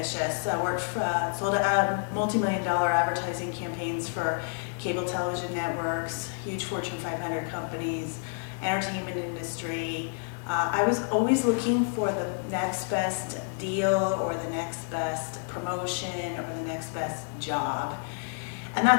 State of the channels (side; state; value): right; silent; 59 dB below the other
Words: I worked for, sold multi-million-dollar advertising campaigns for cable television networks, huge Fortune 500 companies, entertainment industry. I was always looking for the next best deal or the next best promotion or the next best job. And